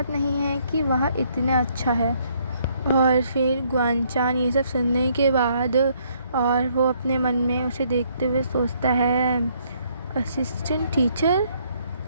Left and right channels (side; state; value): both; inverted; correlation -0.68